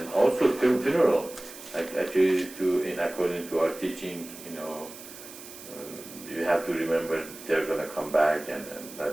also funeral. Actually, according to our teaching, you have to remember they're going to come back, and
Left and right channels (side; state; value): right; noise; hiss, 15 dB below the sound